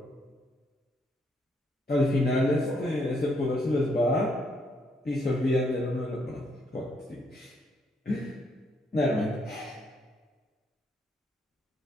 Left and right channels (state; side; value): normal; both; correlation 0.73